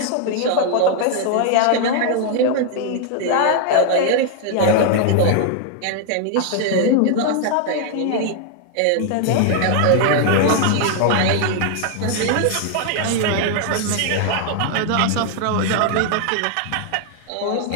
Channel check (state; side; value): different; both; correlation 0.00